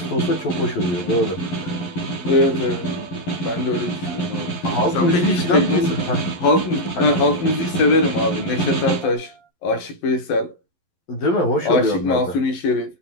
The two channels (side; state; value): right; late; 11 ms